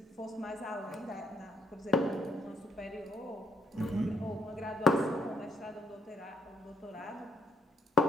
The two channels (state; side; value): normal; both; correlation 0.72